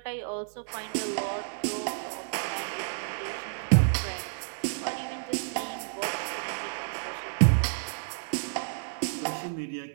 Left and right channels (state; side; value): silent; left; 57 dB below the other